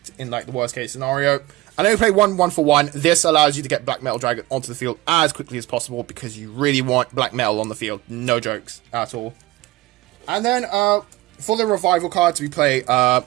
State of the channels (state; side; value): quieter; left; 18.5 dB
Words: in, like, the worst case scenario. I know you play 1/1 for 1. This allows you to get Black Metal Dragon onto the field as quickly as possible, because you really want Black Metal on the field. No jokes at all. And then, for the Revival cards, we play